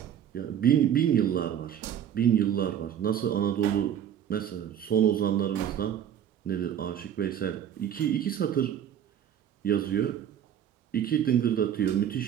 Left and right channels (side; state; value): left; quieter; 9.7 dB